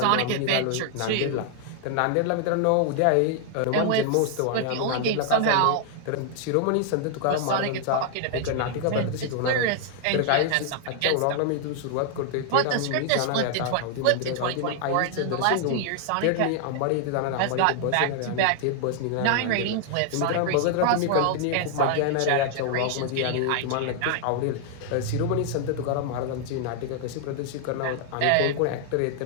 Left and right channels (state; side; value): different; both; correlation 0.00